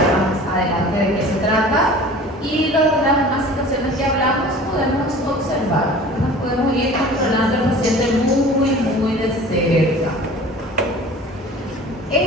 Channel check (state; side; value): normal; both; correlation 0.43